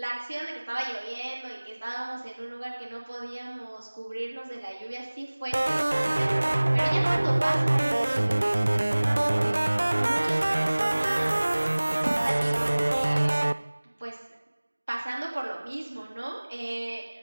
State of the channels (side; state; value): both; inverted; correlation -1.00